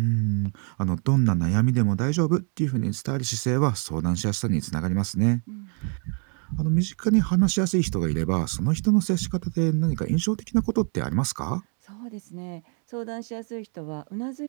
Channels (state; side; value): quieter; left; 39.1 dB